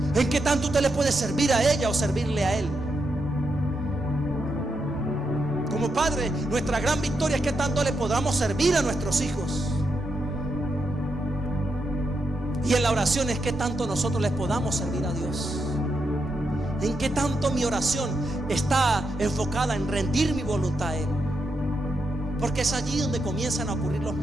En que tanto usted le puede servir a ella o servirle a él. Como padre, nuestra gran victoria es que tanto le podamos servir a nuestros hijos. Y en la oración es que tanto nosotros les podamos servir a Dios. En qué tanto mi oración está enfocada en rendir mi voluntad a Él. Porque es allí donde comienzan a ocurrir los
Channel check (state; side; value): normal; both; correlation 0.83